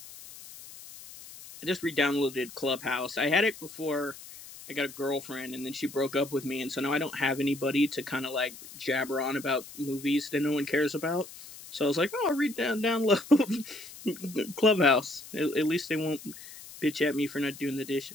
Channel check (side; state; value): left; noise; hiss, 16 dB below the sound